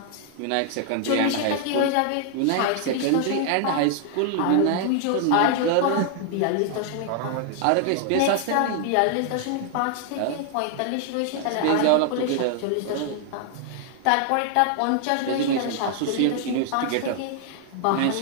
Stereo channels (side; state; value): both; different; correlation 0.00